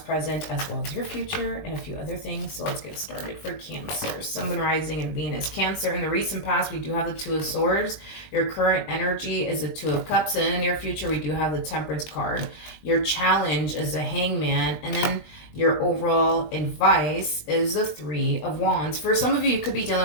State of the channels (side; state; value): right; late; 20 ms